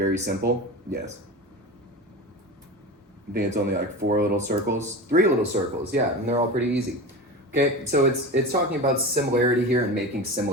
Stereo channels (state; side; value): normal; both; correlation 0.28